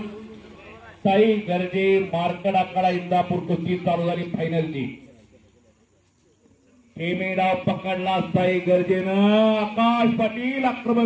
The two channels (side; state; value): both; identical; correlation 1.00